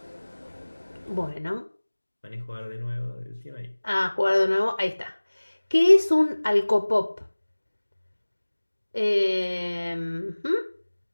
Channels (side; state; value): both; inverted; correlation -1.00